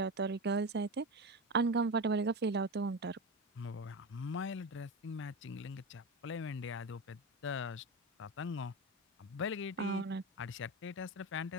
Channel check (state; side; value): normal; both; correlation 0.21